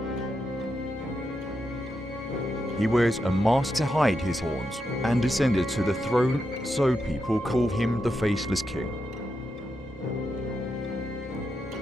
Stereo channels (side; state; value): both; normal; correlation 0.85